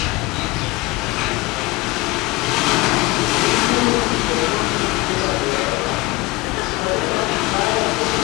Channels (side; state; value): right; quieter; 20.9 dB